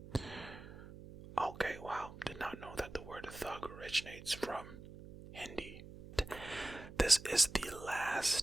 Okay, wow, did not know that the word thug originates from Hindi. This is the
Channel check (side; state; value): right; noise; hum, 15 dB below the sound